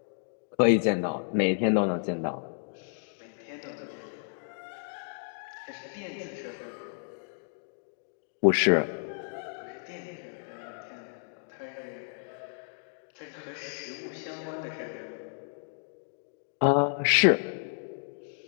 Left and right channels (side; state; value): right; silent; digital silence